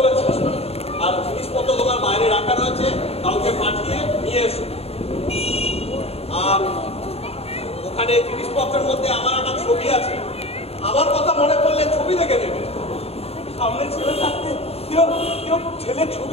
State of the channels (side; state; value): right; late; 0.29 ms